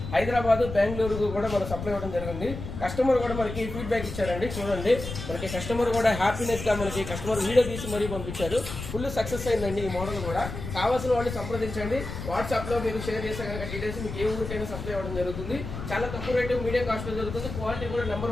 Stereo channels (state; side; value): noise; left; rumble, 8 dB below the sound